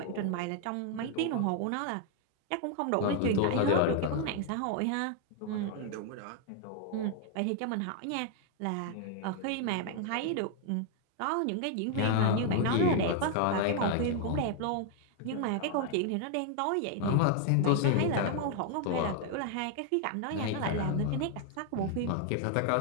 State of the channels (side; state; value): both; different; correlation 0.00